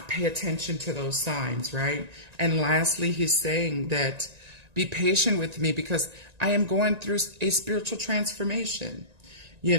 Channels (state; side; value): late; left; 1.9 ms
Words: pay attention to those signs, right? And lastly, he's saying that be patient with me because I am going through a spiritual transformation, you